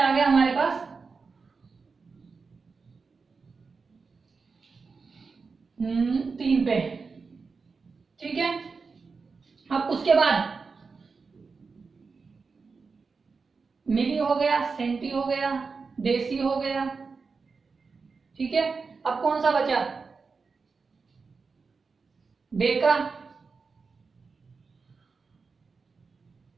गया हमारे पास? 3 पे। ठीक है, अब उसके बाद मिली हो गया, सेंटी हो गया, देसी हो गया। ठीक है, अब कौन सा बचा? डेका।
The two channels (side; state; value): left; quieter; 4.7 dB